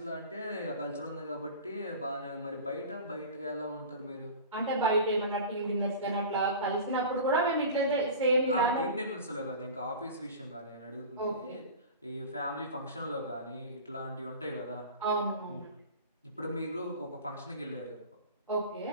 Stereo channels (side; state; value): both; inverted; correlation -0.35